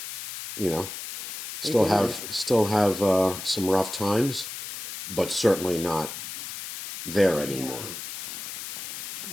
You know? Still have some rough times, but certainly not there anymore.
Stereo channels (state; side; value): noise; left; hiss, 8 dB below the sound